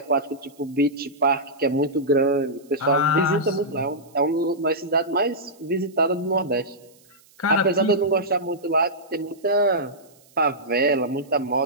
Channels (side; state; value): right; noise; hiss, 29 dB below the sound